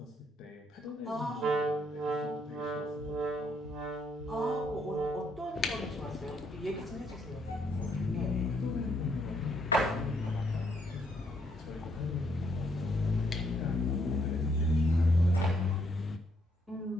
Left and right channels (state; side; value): normal; both; correlation 0.72